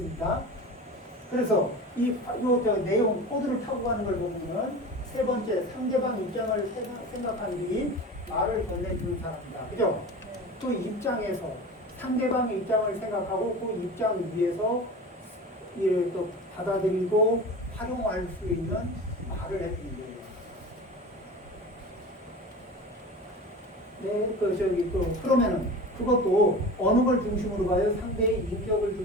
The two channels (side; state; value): both; normal; correlation 0.33